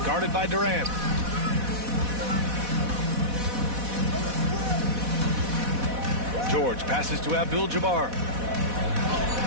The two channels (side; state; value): left; late; 4.1 ms